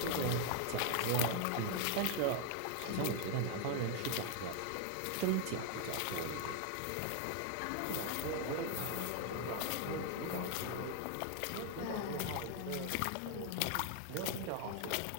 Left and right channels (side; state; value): both; different; correlation 0.00